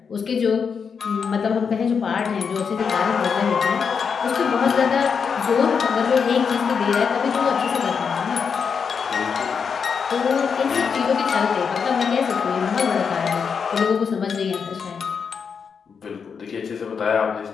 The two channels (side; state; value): right; quieter; 6.2 dB